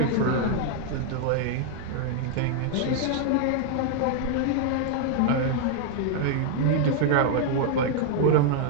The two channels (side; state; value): both; different; correlation 0.00